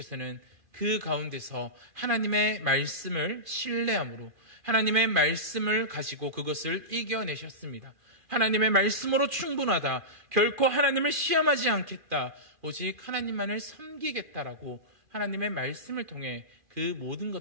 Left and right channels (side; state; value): left; late; 2.4 ms